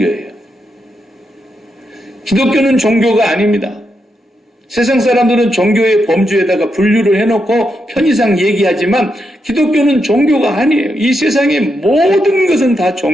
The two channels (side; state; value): both; normal; correlation 0.83